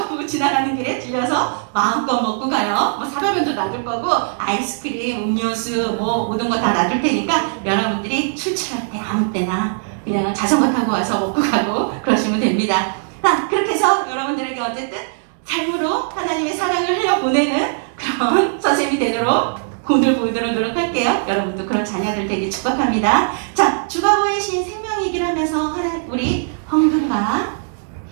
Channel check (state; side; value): silent; left; digital silence